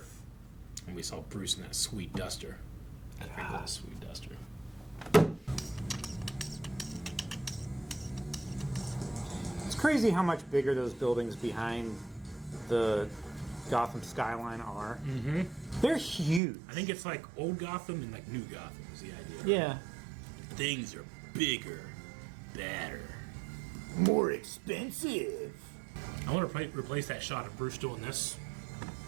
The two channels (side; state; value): left; drops out; at 16.4 s